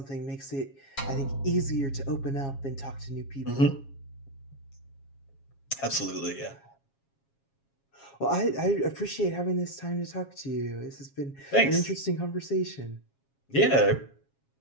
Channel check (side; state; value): right; late; 7.3 ms